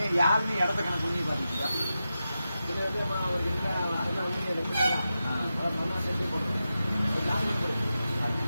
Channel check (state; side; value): inverted; both; correlation -0.91